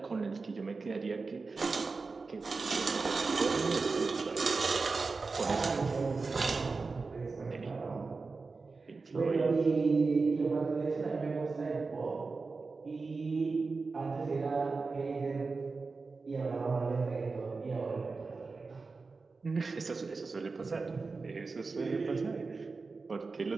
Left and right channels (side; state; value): left; quieter; 4.2 dB